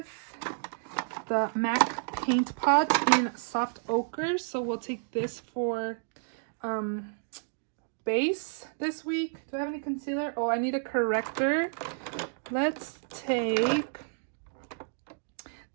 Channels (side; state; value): left; silent; digital silence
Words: the MAC Paint Pot in Soft Ochre. So we'll take this for base this week. Do I have any concealer? Oh, I need a corrector. Let's take